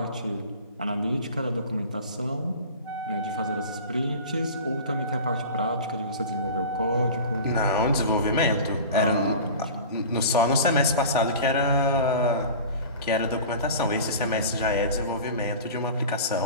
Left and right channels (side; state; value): both; inverted; correlation -0.36